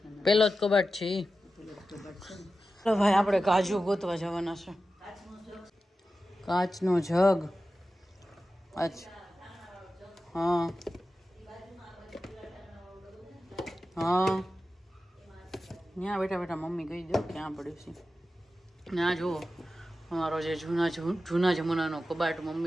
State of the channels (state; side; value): normal; both; correlation 0.93